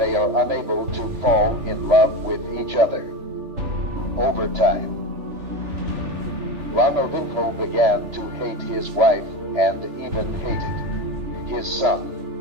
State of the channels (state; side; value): late; left; 3.4 ms